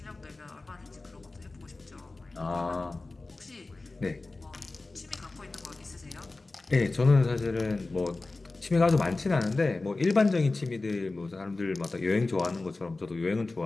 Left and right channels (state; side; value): quieter; right; 3.3 dB